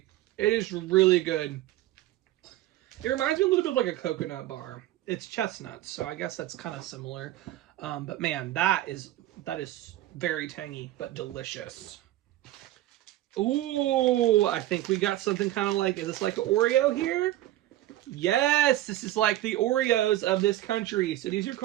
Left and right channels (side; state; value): left; quieter; 14.9 dB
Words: It is really good. It reminds me a little bit of like a coconut bar. It's chestnuts, so I guess that's kind of similar. But man, that is very tangy, but delicious. Ooh, I think we got something kind of like, is this like an Oreo here? Yes, this is like the Oreos of this country. So these are